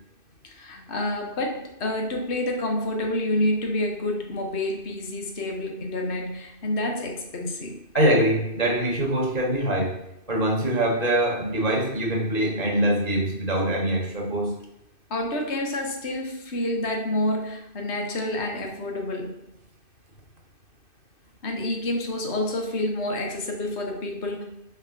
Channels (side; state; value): right; late; 2.6 ms